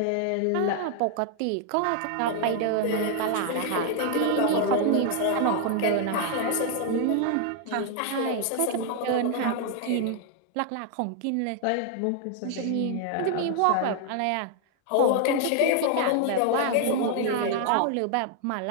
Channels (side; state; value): both; different; correlation 0.00